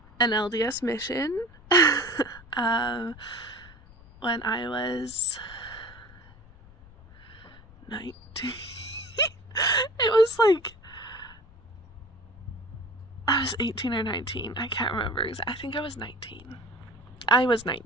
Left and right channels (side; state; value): left; noise; rumble, 22 dB below the sound